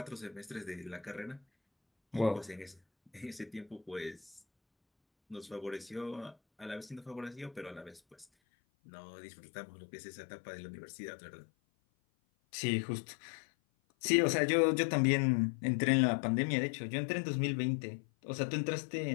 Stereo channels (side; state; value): right; drops out; at 8.2 s